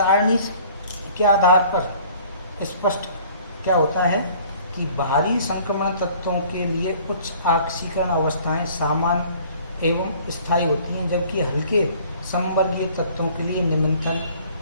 के आधार पर स्पष्ट क्या होता है कि भारी संक्रमण तत्वों के लिए उच्च ऑक्सीकरण अवस्थाएं सामान्य एवं स्थायी होती हैं, जबकि हल्के संबलीय तत्वों के लिए निम्नतम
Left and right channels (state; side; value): inverted; both; correlation -0.53